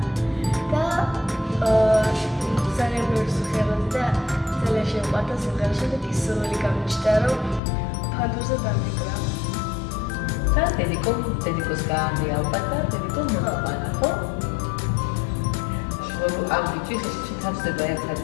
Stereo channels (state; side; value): drops out; right; at 7.6 s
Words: და ძალიან ბევრი სიმღერა და ძალიან შემყვარდა სიმღერა. შემდეგ ის სრული გამიჩნდა, რომ ფანდურზე დამიკრა. და დედიკოს გაანდი ალბათ და დედიკო მოყვანა, ხო? ამ ბიჭის შეთავსდება ერთად